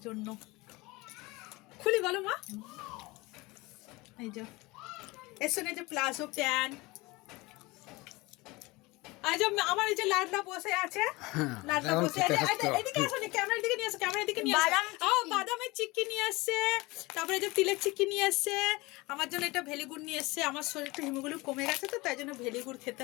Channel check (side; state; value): right; quieter; 22.8 dB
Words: জন্য। খুলি বলো মা। এই যে এর সঙ্গে যে প্লাজো প্যান্ট, আজ আমার এই যে লাডলা বসে আছে, লাডলা বসে আছে। এদিকে আসো, ক্যামেরার দিকে নিয়ে আসো, ক্যামেরার দিকে নিয়ে আসো। বাদামের চিক্কি নিয়ে আসছে, তারপরে যে তিলের চিক্কি নিয়ে আসছে। আমার জন্য এটা ভেলিগুড় নিয়ে এসছে, আমার শরীরটা হিমোগুলো কমে গেছে তো, তাই জন্য ভেলিগুড় খেতে